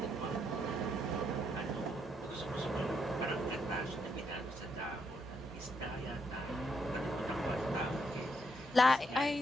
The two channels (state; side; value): normal; both; correlation 0.77